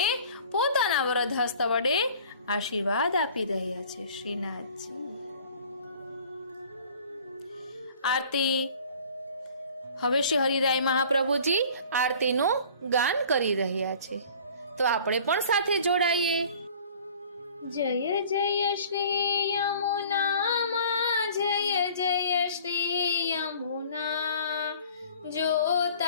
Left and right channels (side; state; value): both; inverted; correlation -0.48